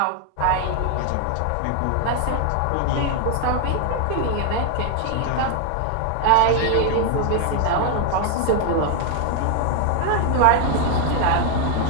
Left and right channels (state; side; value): different; both; correlation 0.00